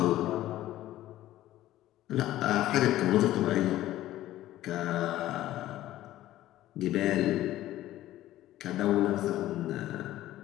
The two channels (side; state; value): right; quieter; 14.5 dB